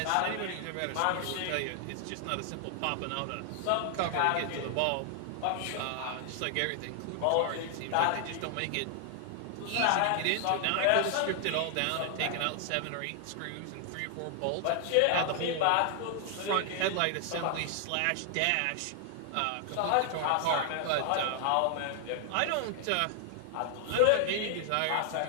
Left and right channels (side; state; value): both; different; correlation 0.00